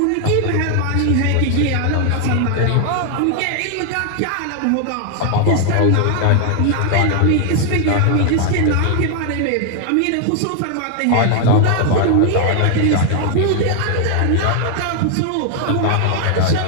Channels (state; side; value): different; both; correlation 0.00